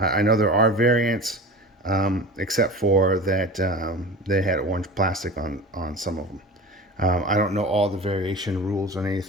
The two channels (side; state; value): both; normal; correlation 0.34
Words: know there are variants, except for that they had orange plastic on some of them. I don't know all the variation rules on